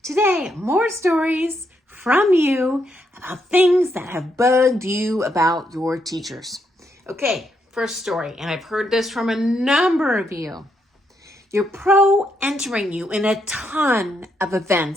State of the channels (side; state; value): both; normal; correlation 0.78